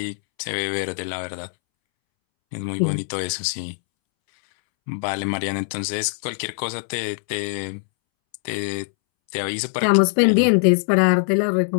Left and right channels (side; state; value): right; silent; 64 dB below the other